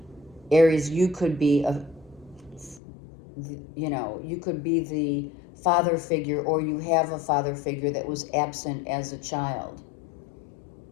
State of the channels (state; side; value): drops out; right; at 2.8 s